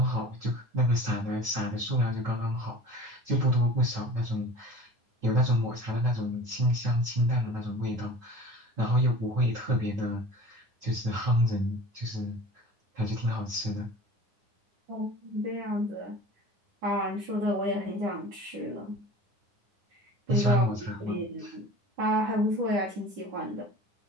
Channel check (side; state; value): left; late; 9.8 ms